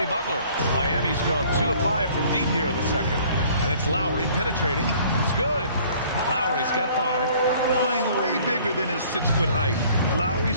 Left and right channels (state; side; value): inverted; both; correlation -0.55